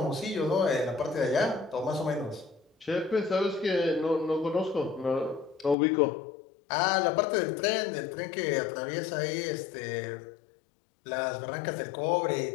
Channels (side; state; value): right; drops out; at 5.8 s